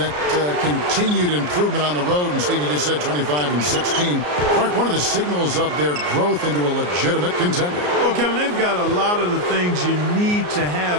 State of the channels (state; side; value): late; left; 34 ms